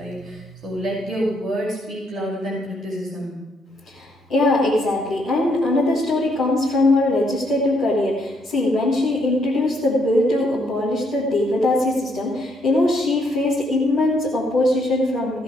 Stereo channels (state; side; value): normal; both; correlation 0.72